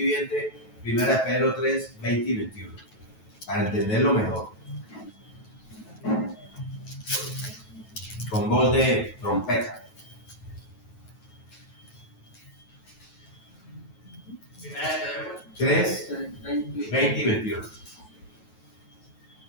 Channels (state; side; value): late; right; 9.2 ms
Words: 1 de Pedro 3:20 y 21. Para entenderlo mejor. Con voz de trompeta. 3, 20 y 21.